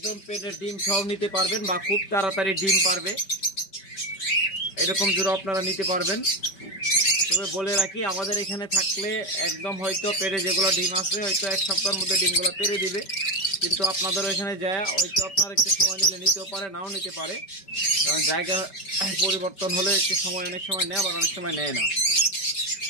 পেটের ডিম সহ নিতে পারবেন বা খুব তাড়াতাড়ি ডিম পারবে, এরকম জোড়া আপনারা নিতে পারবেন। তবে বলে রাখি, আমাদের এখানে থাকলে একদম হয়তো পেটে যেগুলো ডিম আছে হয়তো 1 সপ্তাহের মধ্যে ডিমগুলো পেরে দিবে, কিন্তু আপনাদের ওইখানে যায় হয়তো আপনার একটু সময় নিলে নিতেও পারে, নাও নিতে পারে। কারণ জায়গা পরিবর্তন হলে একটু সময় অনেক সময় নেয়, আবার অনেক সময় নেয় না।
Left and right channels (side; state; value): right; late; 5.2 ms